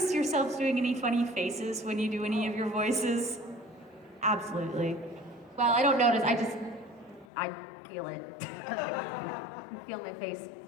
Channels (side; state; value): right; drops out; at 7.2 s